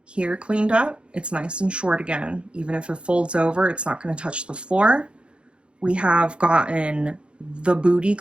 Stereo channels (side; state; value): left; late; 0.056 ms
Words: here cleaned up. It's nice and short again. Even if it folds over, it's not going to touch the floor. We have gotten the booty